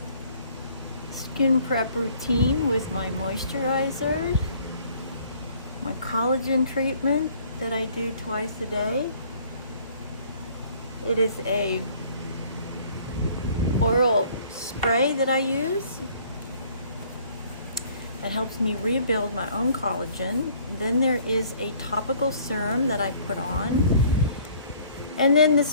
skin prep routine with my moisturizer, my collagen treatment that I do twice a day. It is a oral spray that I use that helps me rebuild my own collagen. Then there is a topical serum that I put on. And then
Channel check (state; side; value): inverted; both; correlation -0.57